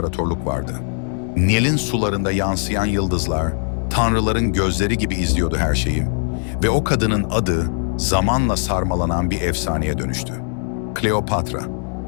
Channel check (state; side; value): silent; right; 66 dB below the other